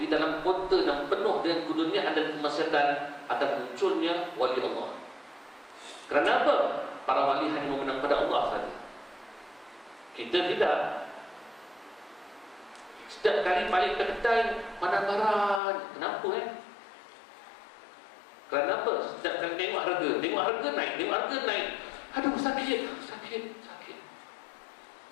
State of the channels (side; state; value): right; drops out; at 15.6 s